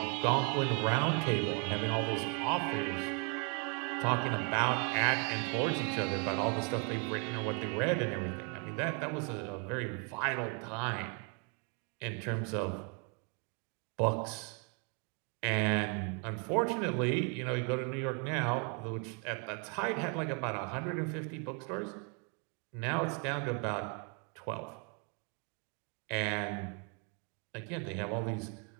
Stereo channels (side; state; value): left; quieter; 36.8 dB